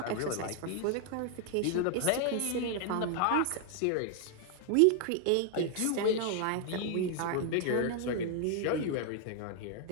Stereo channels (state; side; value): different; both; correlation 0.00